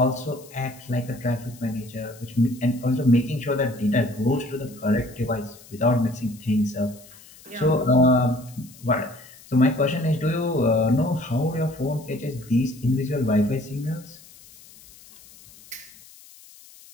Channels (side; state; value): left; noise; hiss, 22 dB below the sound